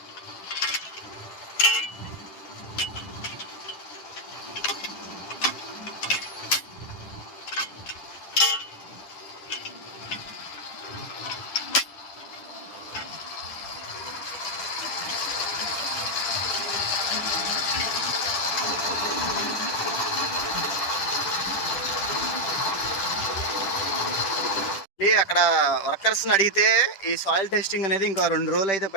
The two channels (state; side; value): late; right; 10 ms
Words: అక్కడ వర్కర్స్ని అడిగితే ఈ సాయిల్ టెస్టింగ్ అనేది ఇంకా 2 రోజులు అయితే